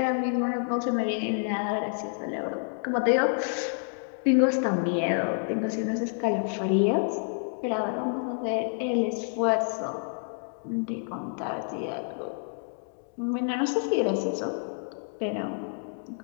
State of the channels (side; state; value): right; silent; 59 dB below the other